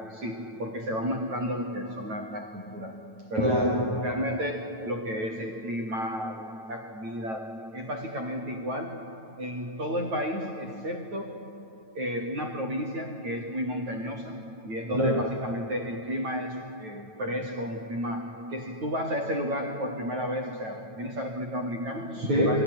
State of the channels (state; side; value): late; left; 9.1 ms